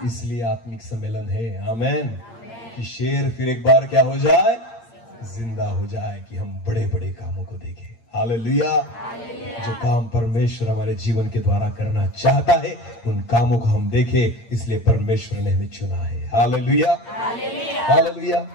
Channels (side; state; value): right; late; 8.7 ms